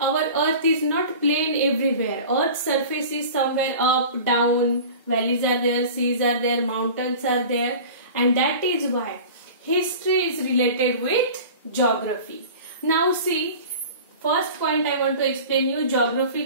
earth is not plain everywhere. Earth's surface is somewhere up, down, valleys are there, seas are there, mountains are there, and that is why history is related with geography. Now see, first point I want to explain you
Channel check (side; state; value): both; inverted; correlation -0.38